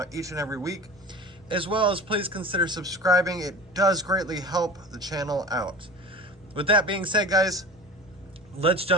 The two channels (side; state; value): both; normal; correlation 0.36